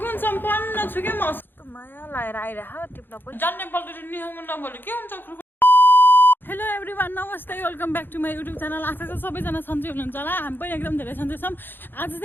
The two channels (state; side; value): late; right; 0.097 ms